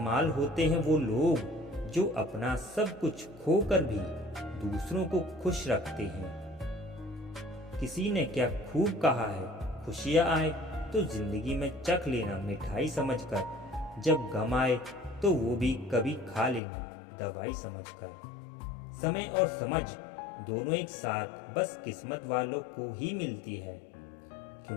होते हैं वो लोग जो अपना सब कुछ खोकर भी दूसरों को खुश रखते हैं। किसी ने क्या खूब कहा है, खुशियाँ आए तो जिंदगी में चख लेना मिठाई समझकर, जब गम आए तो वो भी कभी खा लेना दवाई समझकर। समय और समझ दोनों एक साथ बस किस्मत वालों को ही मिलती है,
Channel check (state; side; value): drops out; right; at 16.6 s